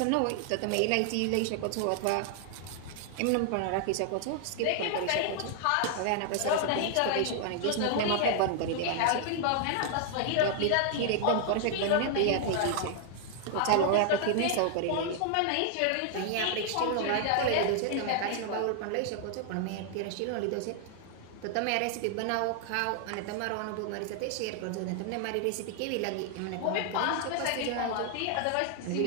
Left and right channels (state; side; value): different; both; correlation 0.00